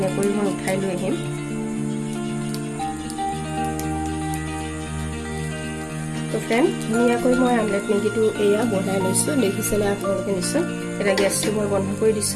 মই উঠাই লৈ আহিম। তো ফ্ৰেণ্ড ধুনীয়াকৈ মই আমলেট মেগীটো এয়া বনাই লৈছোঁ, দেখিছেনে আপোনালোকে নিশ্চয়। এতিয়া গেছটো মই বন্ধ কৰি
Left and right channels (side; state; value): both; identical; correlation 1.00